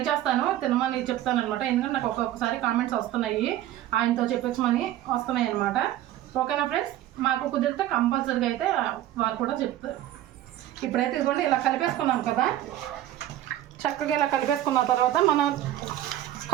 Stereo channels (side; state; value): left; quieter; 13.3 dB